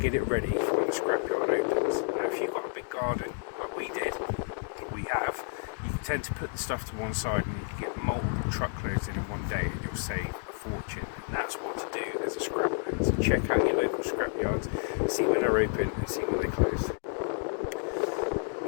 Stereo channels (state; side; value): silent; right; 58 dB below the other